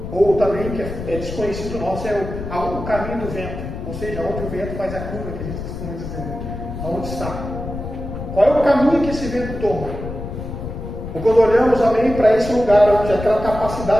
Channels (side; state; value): left; noise; rumble, 8 dB below the sound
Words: Ou também, que é desconhecido nosso, é o caminho do vento, ou seja, onde o vento faz a curva, que a gente costuma dizer, aonde está. Qual é o caminho que esse vento toma? Ou quando olhamos, para esse lugar, onde aquela